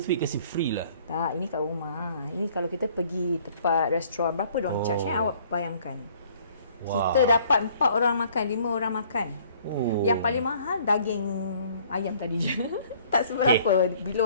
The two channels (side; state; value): both; inverted; correlation -0.58